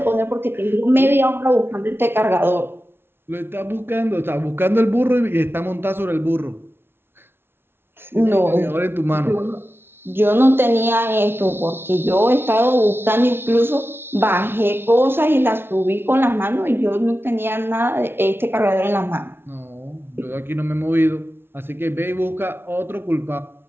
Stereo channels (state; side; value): late; left; 0.11 ms